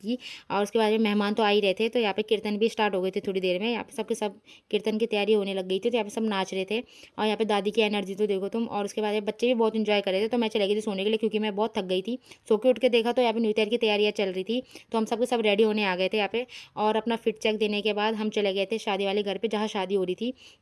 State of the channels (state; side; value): identical; both; correlation 1.00